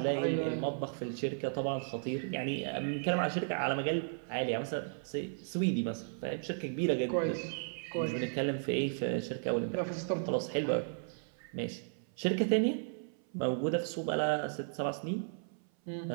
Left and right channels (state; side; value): silent; left; 55 dB below the other